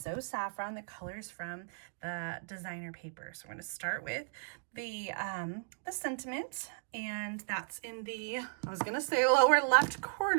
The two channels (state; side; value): silent; left; digital silence